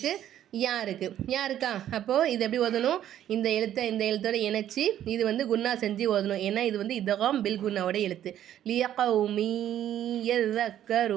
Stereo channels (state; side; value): quieter; left; 11.3 dB